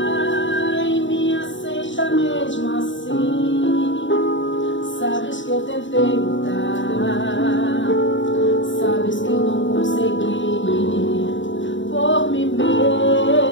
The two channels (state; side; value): late; right; 0.55 ms